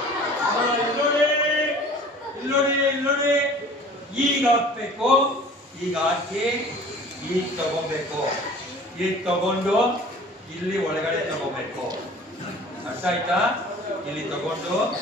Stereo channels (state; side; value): normal; both; correlation 0.46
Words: ಇಲ್ಲೋಡಿ ಈಗ ಹಾಕ್ಬೇಕು ಈಗ ಹಾಕಿ ಈಗ ತಗೋಬೇಕು ಈಗ ತಗೊಂಡು ಇಲ್ಲಿ ಒಳಗಡೆ ತಗೋಬೇಕು ಅರ್ಥ ಆಯ್ತಾ ಇಲ್ಲಿ ತಗೊಂಡು